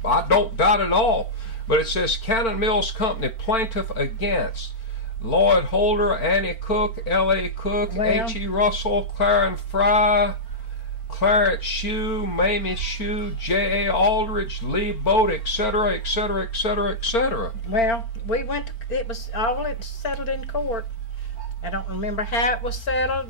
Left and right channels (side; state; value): right; late; 4.4 ms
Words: I don't doubt it all. But it says Cannon Mills Company plaintiff against Lloyd Holder, Annie Cook, L.A. Cook, H.E. Russell, Clarence Fry, Clarence Shue, Mamie Shue, J.A. Aldridge, Lee Boat, etc., etc., etc., etc. Well, we went to, it was all settled in court. I don't remember how it was